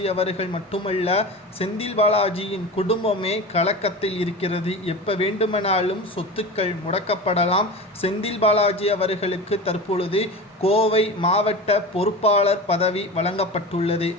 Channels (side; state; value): both; normal; correlation 0.30